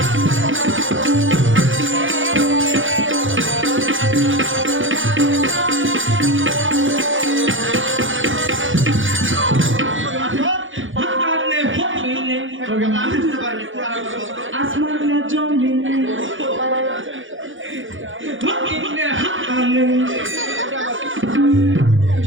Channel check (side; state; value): left; late; 0.57 ms